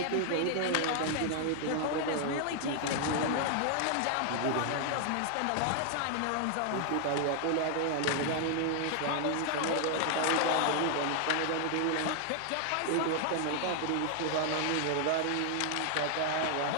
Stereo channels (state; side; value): different; both; correlation 0.00